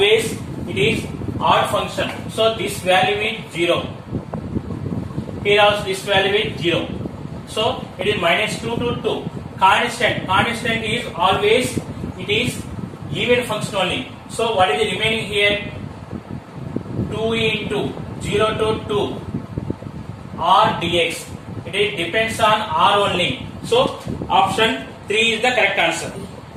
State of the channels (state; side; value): identical; both; correlation 1.00